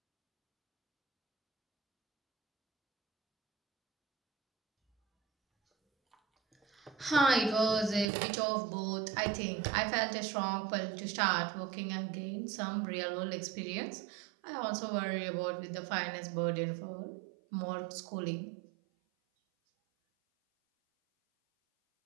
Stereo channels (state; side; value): drops out; left; at 8.1 s